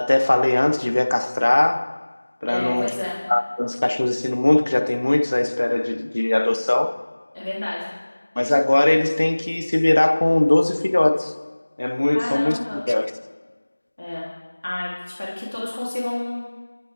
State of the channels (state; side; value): inverted; both; correlation -1.00